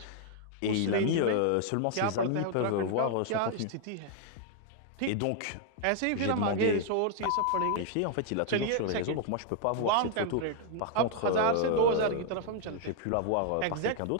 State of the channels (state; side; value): different; both; correlation 0.00